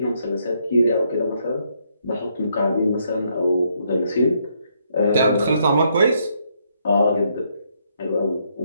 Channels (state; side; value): inverted; both; correlation -0.74